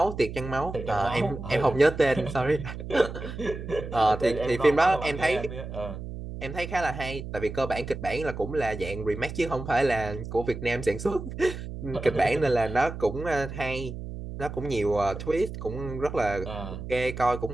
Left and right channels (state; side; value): noise; right; hum, 9 dB below the sound